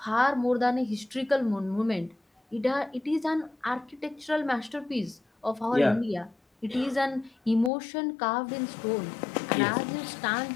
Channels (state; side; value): drops out; right; at 7.7 s